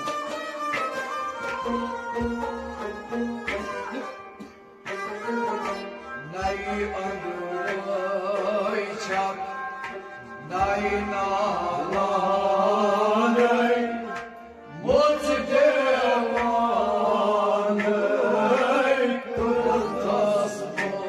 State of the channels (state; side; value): identical; both; correlation 1.00